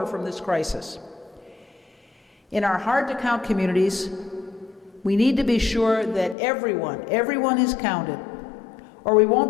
from this crisis. In our hard-to-count communities, we need to be sure that everyone is counted, or we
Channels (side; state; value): right; drops out; at 6.4 s